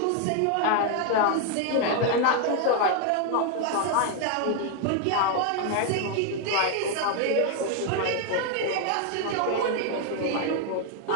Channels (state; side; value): different; both; correlation 0.01